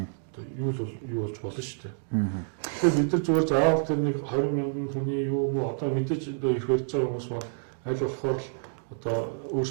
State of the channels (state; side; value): silent; left; 59 dB below the other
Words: Одоо юу болж болно шүү дээ. Тэгэхээр бид нар зүгээр заавал тэр нэг 20,000 хүний юу юм уу одоо мэдээж ирэх барьж байгаа хүмүүс маань аль болохоор л одоо